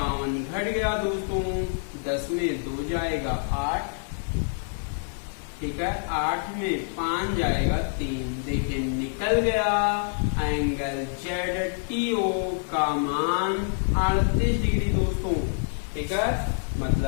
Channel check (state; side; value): silent; right; digital silence